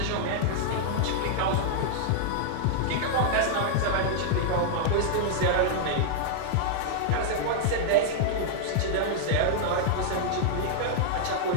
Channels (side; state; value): both; different; correlation -0.01